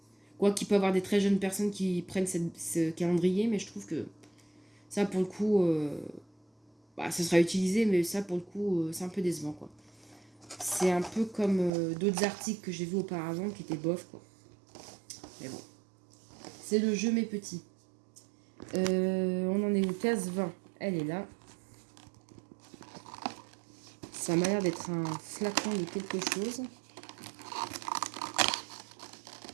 quoi qu'il peut y avoir des très jeunes personnes qui prennent ce calendrier, mais je trouve que ça pour le coup, ça sera utilisé, mais ça pour le coup, c'est un peu décevant quoi. C'est un peu comme d'autres articles que j'ai vus auparavant qui étaient bof quoi. Mais bon, c'est le jeu mes petits. On en est où? Case 20, elle est là. Ça m'a l'air d'être un flacon de quelque chose.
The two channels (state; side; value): drops out; left; at 11.7 s